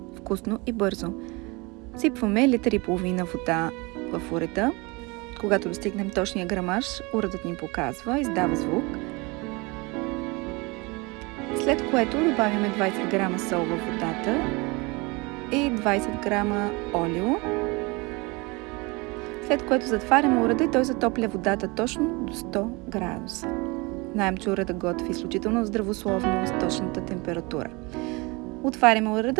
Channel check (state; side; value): quieter; left; 26.3 dB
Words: Вкусно и бързо. Сипваме литър и половина вода в урета. Когато достигнем точния грамаж, уредът ни показва, издава звук. След което добавяме 20 грама сол във водата и 20 грама олио. След което затваряме уреда и той затопля водата точно до 100 градуса. Знаем, че уредът готви изключително здравословно с точната температура. Отваряме